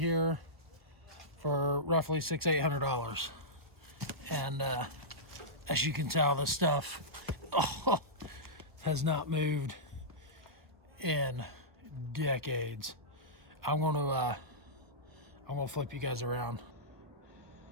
for roughly $600-800. And as you can tell, this stuff has not moved in decades. I'm gonna flip you guys around.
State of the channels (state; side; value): late; left; 1.2 ms